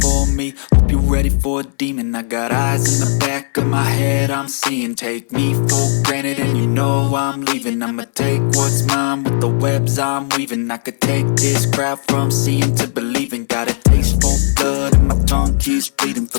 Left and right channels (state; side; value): silent; right; 69 dB below the other